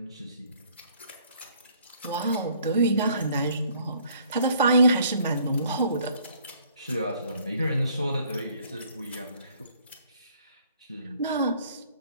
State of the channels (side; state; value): both; inverted; correlation -0.60